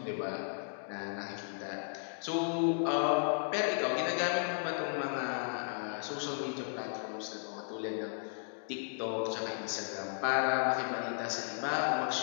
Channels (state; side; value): silent; right; digital silence